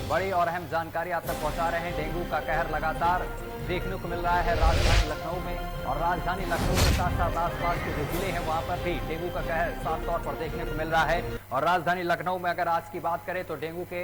बड़ी और अहम जानकारी आप तक पहुंचा रहे हैं। डेंगू का कहर लगातार देखने को मिल रहा है राजधानी लखनऊ में और राजधानी लखनऊ के साथ साथ आसपास के जो जिले हैं वहां पर भी डेंगू का कहर साफ तौर पर देखने को मिल रहा है। और राजधानी लखनऊ में अगर आज की बात करें तो डेंगू के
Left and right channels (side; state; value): both; identical; correlation 1.00